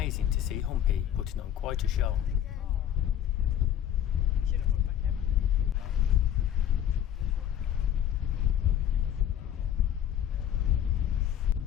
to see Humpy putting on quite a show. Should have put my camera.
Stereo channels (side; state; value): right; quieter; 10.5 dB